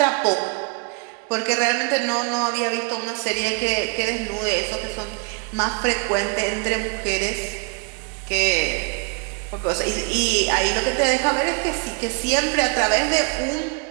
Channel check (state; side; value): quieter; left; 32.2 dB